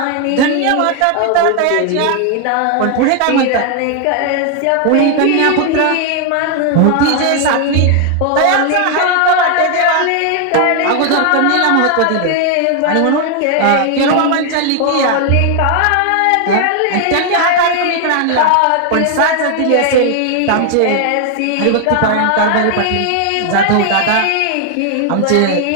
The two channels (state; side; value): different; both; correlation 0.00